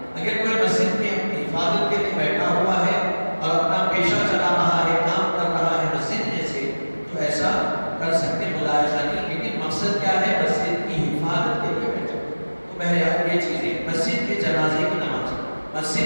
اگر کوئی مسجد میں اپنی حفاظت کے لیے بیٹھا ہوا ہے اور اپنا پیشہ چلا رہا ہے، کام کر رہا ہے مسجد میں سے، تو ایسا کر سکتے، ملاحظہ نہیں، لیکن مقصد کیا ہے؟ مسجد کی حفاظت کے لیے بیٹھا۔ تو بہرحال یہ چیزیں، مسجد میں جنازے کی نماز،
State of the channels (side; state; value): both; inverted; correlation -1.00